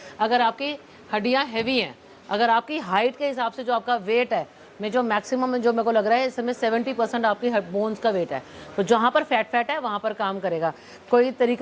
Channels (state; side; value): identical; both; correlation 1.00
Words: अगर आपकी हड्डियाँ हैवी हैं, अगर आपकी हाइट के हिसाब से जो आपका वेट है, में जो मैक्सिमम में जो मेरे को लग रहा है इसमें 70% आपकी बोन्स का वेट है, तो जहाँ पर फैट है वहाँ पर काम करेगा। कोई